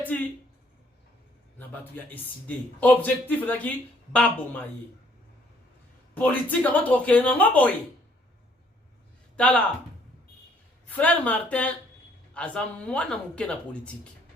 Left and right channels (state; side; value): normal; both; correlation 0.64